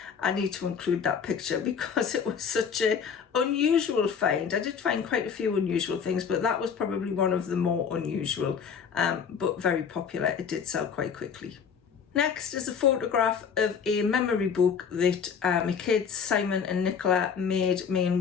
I need to include that picture because it was such an unusual find. I did find quite a few unusual things, but that was probably one of the more unusual, but very popular. It did sell quite quickly. Next is a photograph of a memory book that my kids, Simon and Nicola, made me and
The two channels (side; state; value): right; quieter; 6.7 dB